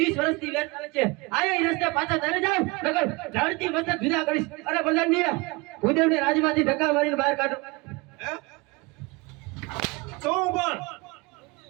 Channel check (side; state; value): left; quieter; 25.5 dB